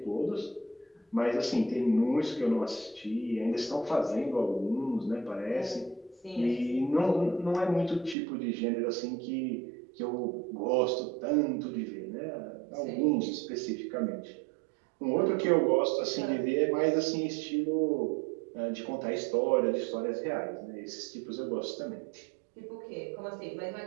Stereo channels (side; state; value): left; drops out; at 8.2 s